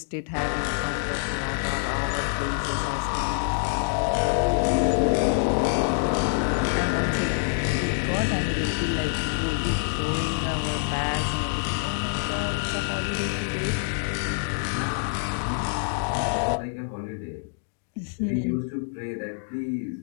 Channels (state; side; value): silent; right; digital silence